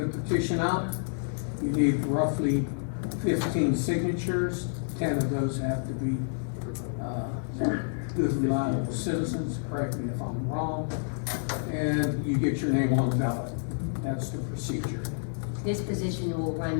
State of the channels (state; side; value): silent; right; 59 dB below the other